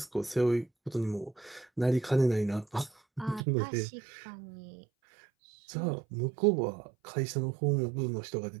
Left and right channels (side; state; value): left; drops out; at 3.4 s